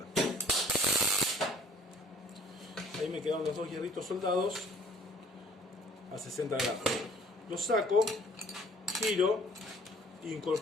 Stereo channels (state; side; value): normal; both; correlation 0.54